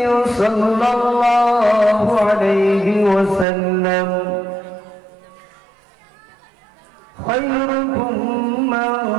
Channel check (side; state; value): left; drops out; at 3.5 s